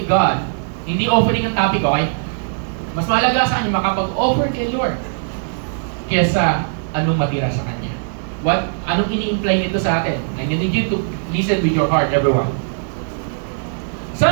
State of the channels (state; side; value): silent; left; 62 dB below the other